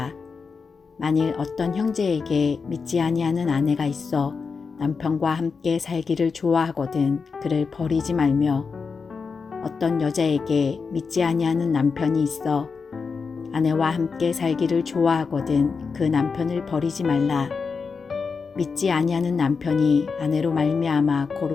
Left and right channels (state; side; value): quieter; right; 5.1 dB